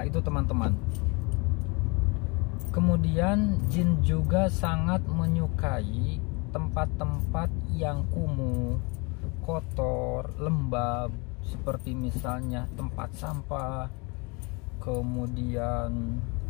itu teman-teman. Kemudian jin juga sangat menyukai tempat-tempat yang kumuh, kotor, lembab, seperti misalnya tempat sampah, kemudian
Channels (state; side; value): quieter; right; 29.1 dB